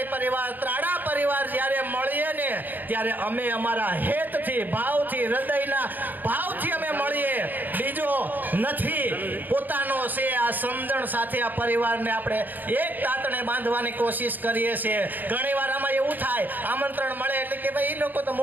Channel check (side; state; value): left; late; 0.086 ms